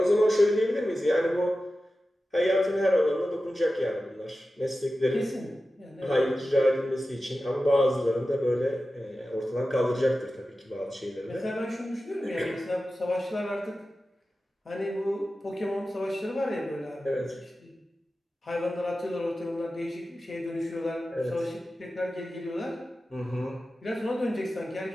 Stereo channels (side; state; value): both; normal; correlation 0.94